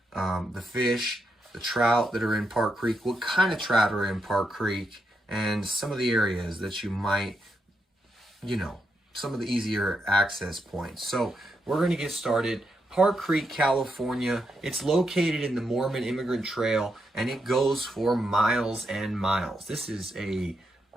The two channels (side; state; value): both; normal; correlation 0.82